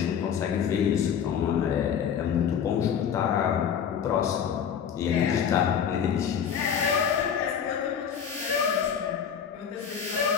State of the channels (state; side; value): quieter; right; 8.0 dB